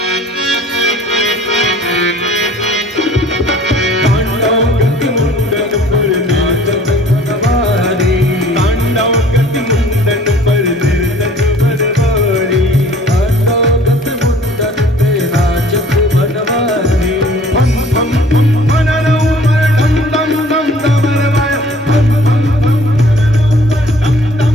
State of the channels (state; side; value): normal; both; correlation 0.52